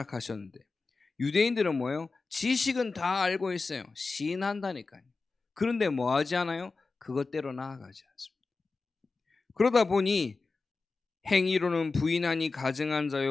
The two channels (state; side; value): quieter; right; 4.0 dB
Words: 유대인들은 뭐예요? 지식은 다 알고 있어요. 시인한다니까요. 그런데 뭐 하지 않아요? 그것대로 나아가지 않습니다. 그러다 보니 행위로는 부인하니 가증한